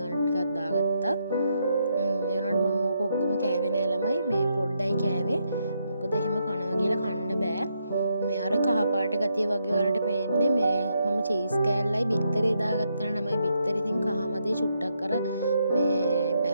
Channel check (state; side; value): inverted; both; correlation -0.79